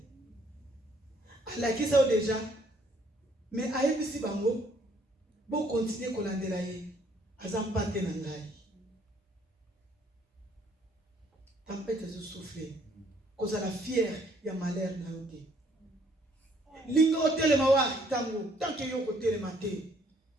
ala kisa déjà mais ayebisi bango bon continuer kolandela ye azampate na ngai tempête zo souffler cause la fière ya malheur na yote linga hôtel mawa tango tant que yoko tele maté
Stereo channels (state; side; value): normal; both; correlation 0.65